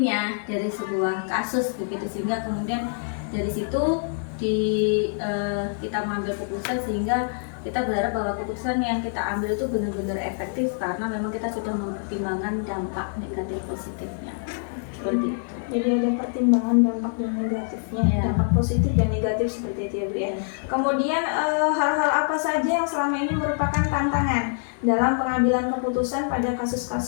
dari sebuah kasus begitu, sehingga kemudian dari situ kita mengambil keputusan, sehingga kita berharap bahwa keputusan yang kita ambil itu benar-benar efektif karena memang kita sudah mempertimbangkan dampak negatif positifnya seperti itu. Jadi ada pertimbangan dampak dan negatifnya, Iya. dampak positif dan negatif seperti itu ya Bu ya. Kemudian hal-hal apa saja yang selama ini merupakan tantangan dalam pengambilan keputusan pada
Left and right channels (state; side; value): silent; right; digital silence